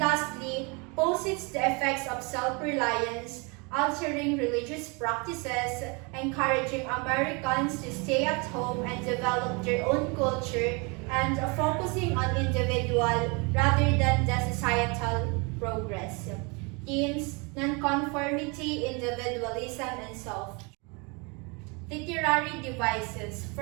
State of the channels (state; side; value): quieter; left; 30.6 dB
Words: posits the effects of self-reliance, altering religious practices, encouraging Americans to stay at home and develop their own culture, and focusing on individual rather than the societal progress. Themes: nonconformity, individualism, and self. Literary devices.